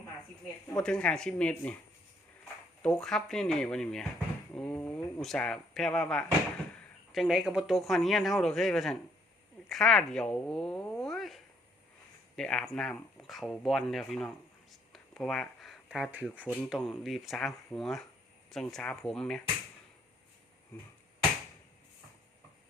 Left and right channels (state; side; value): normal; both; correlation 0.66